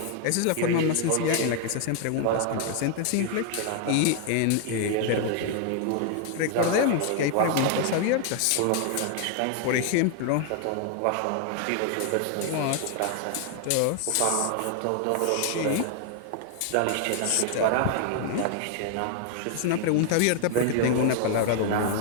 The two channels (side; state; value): both; different; correlation 0.00